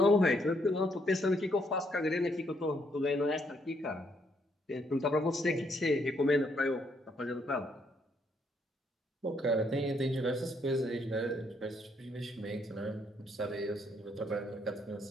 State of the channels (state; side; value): normal; both; correlation 0.72